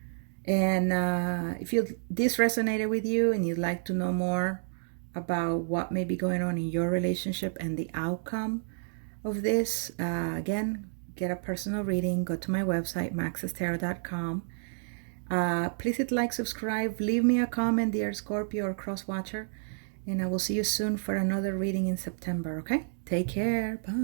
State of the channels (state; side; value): silent; left; digital silence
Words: And if this resonated with you and you'd like to know more about what may be going on in your relationship and the outcome of this, again, get a personal reading. Go to my website, maxestarot.com. Please hit like, subscribe, leave me a comment, dear Scorpio or cross watcher, and I will see you soon for another reading in September. Okay, take care.